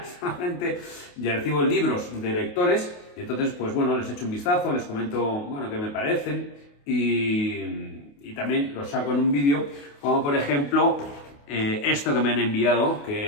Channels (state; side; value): late; right; 28 ms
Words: Solamente ya recibo libros de lectores, y entonces, pues bueno, les echo un vistazo, les comento, bueno, qué me parecen, y también los saco en un vídeo, como por ejemplo esto que me han enviado,